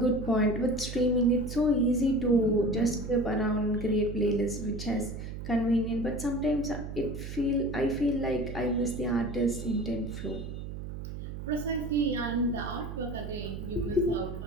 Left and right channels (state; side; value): noise; right; hum, 8 dB below the sound